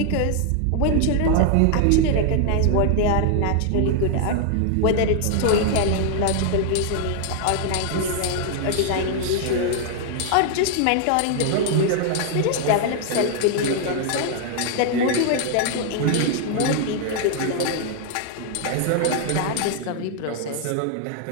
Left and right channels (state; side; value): different; both; correlation 0.00